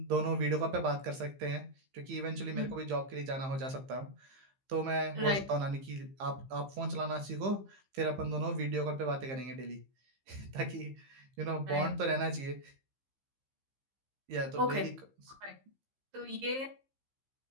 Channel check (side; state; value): left; late; 15 ms